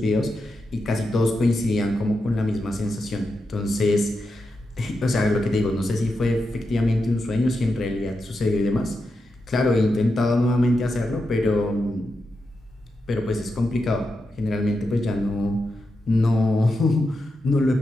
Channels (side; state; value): both; normal; correlation 0.87